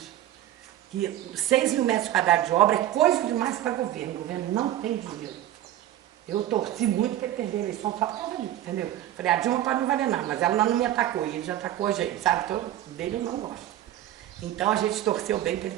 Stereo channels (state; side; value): quieter; left; 12.9 dB